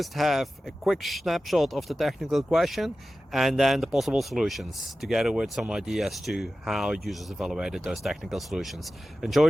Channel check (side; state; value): both; normal; correlation 0.94